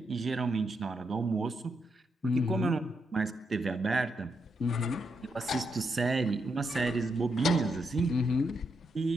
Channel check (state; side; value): normal; both; correlation 0.81